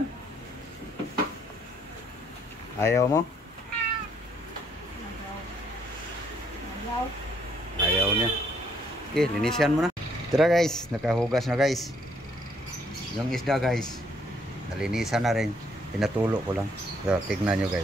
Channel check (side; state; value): both; normal; correlation 0.68